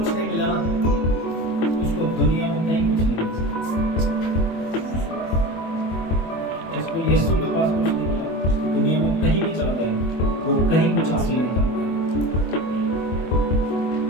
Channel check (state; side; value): late; right; 24 ms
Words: नहीं मिला ना, उसको दुनिया में कहीं कुछ नहीं मिल सकता। जिसको यीशु के पास कुछ नहीं मिला, दुनिया में कहीं भी चला जाए वो कहीं कुछ हासिल नहीं कर पाएगा।